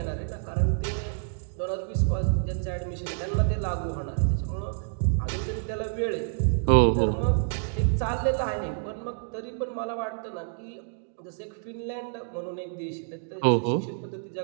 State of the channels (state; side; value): silent; left; digital silence